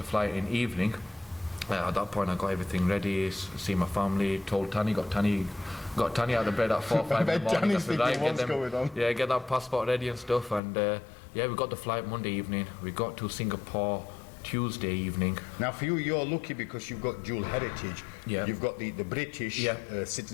flight in evening. At that point, I got everything ready, see my family, told Tani, got Tani out of bed at 4 or 5 in the morning. I said, right, get that passport ready and stuff. And we got the flight Monday evening. We got to Singapore Tuesday evening. Now for you, you're lucky because you've got dual heritage. Yeah. You've got the British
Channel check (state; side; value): drops out; right; at 10.6 s